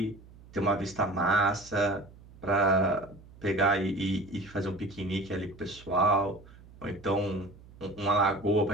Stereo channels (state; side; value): noise; right; hum, 22 dB below the sound